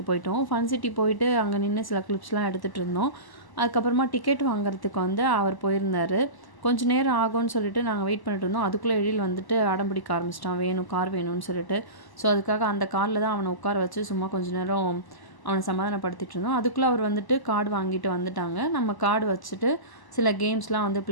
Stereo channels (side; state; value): right; late; 1.0 ms